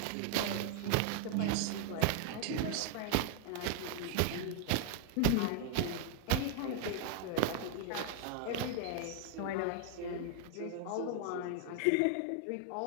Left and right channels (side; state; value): both; different; correlation 0.00